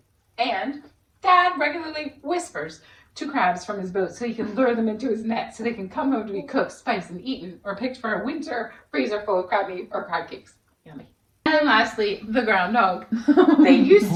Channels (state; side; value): identical; both; correlation 1.00